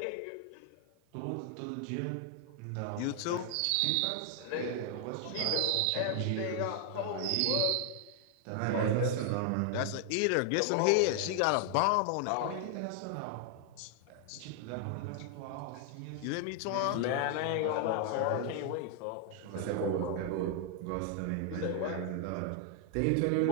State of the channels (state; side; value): different; both; correlation 0.00